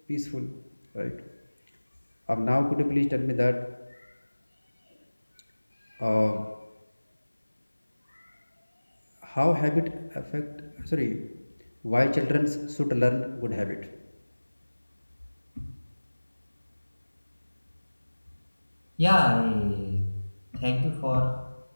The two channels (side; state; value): both; inverted; correlation -1.00